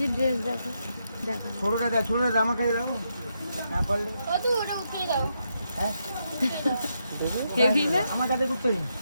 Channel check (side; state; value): both; inverted; correlation -0.81